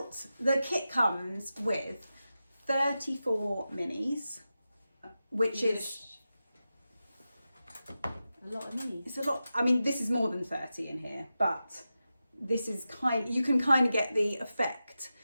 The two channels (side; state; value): both; inverted; correlation -0.92